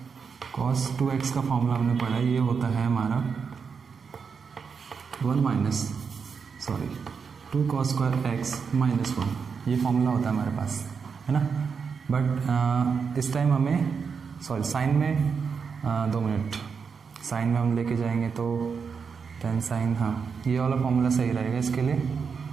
cos 2x का फॉर्मूला हमने पढ़ा है, ये होता है हमारा 2 cos स्क्वायर एक्स माइनस 1, ये फॉर्मूला होता है हमारे पास, है ना। बट इस टाइम हमें साइन में 2 मिनट, साइन में हम लेके जाएंगे तो 10 साइन, हाँ ये वाला फॉर्मूला सही रहेगा इसके लिए।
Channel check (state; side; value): quieter; left; 5.9 dB